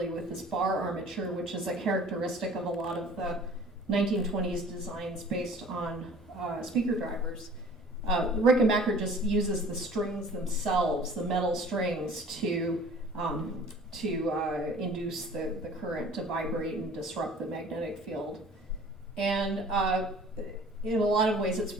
with this bar armature, which is a characteristic of a lot of the 1920s designs based on speaker drivers. Rickenbacker just uses the strings themselves, the metal strings, to induce the current to vibrate and disrupt the magnetic field. And in a lot of ways it's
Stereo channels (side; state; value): both; normal; correlation 0.47